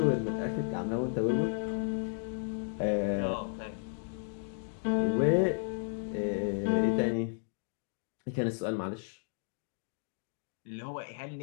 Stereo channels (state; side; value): silent; right; digital silence